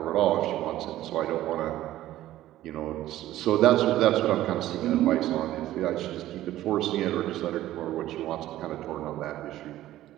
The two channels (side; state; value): left; quieter; 14.4 dB